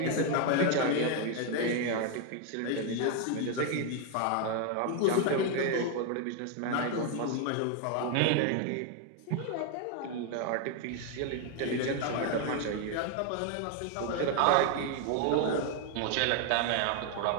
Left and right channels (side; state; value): both; different; correlation 0.01